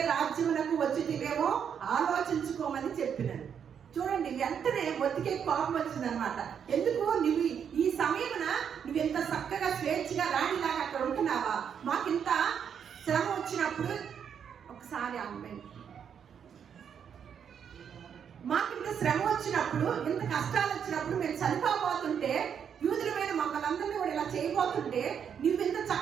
రాజ్యమునకు వచ్చితివేమో ఆలోచించుకోమని చెప్పినాను. చూడండి, వెంటనే మొత్తికే కోపం వచ్చిందనమాట. ఎందుకు నువ్వు ఈ సమయమున నువ్వెంత చక్కగా స్వేచ్ఛగా రాణిలాగా అక్కడ ఉంటున్నావా? మాకింత శ్రమ వచ్చినప్పుడు ఒకసారి అమ్మాయి మాకింత శ్రమ వచ్చినప్పుడు, ఇంత కష్టాలు వచ్చినప్పుడు మేము చనిపోబోతుంటే, యూదుల మీద మమ్మల్ని అందరినీ కూడా ఇలా చేయబోతుంటే నువ్వు ఇంత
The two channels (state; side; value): quieter; left; 7.8 dB